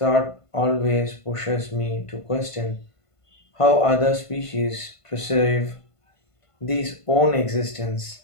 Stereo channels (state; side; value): late; right; 1.5 ms